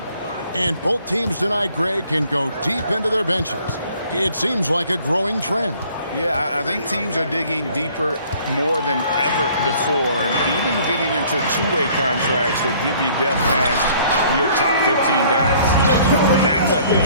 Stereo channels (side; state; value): both; inverted; correlation -0.57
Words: And both teams tonight, Greg, can go deep into their benches. It seems like a growing trend. Yeah, I think teams are digging deeper more than ever before, and even getting into two-way contracts that give you depth past your top 15 guys. That's a